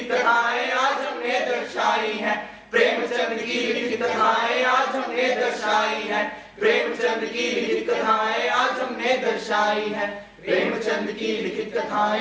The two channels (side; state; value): both; identical; correlation 1.00